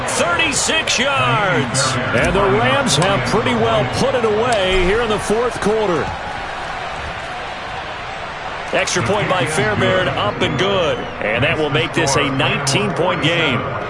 36 yards. And the Rams have pretty well put it away here in the fourth quarter. Extra point by Fairbairn, up and good. And that will make this a 19-point game.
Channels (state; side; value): identical; both; correlation 1.00